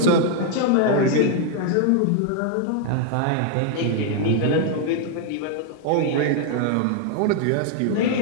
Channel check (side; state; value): both; different; correlation 0.00